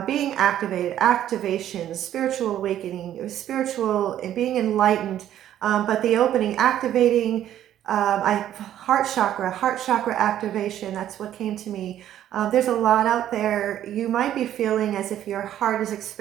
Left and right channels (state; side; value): quieter; left; 11.5 dB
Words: being activated, activation, spiritual awakening, spiritual and being enlightened, but the opening, activating, heart chakra activation, that's what came to me. There's a lot out there. You might be feeling as if your heart is